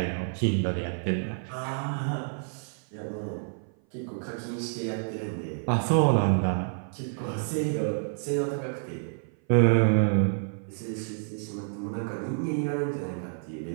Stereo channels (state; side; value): silent; left; 56 dB below the other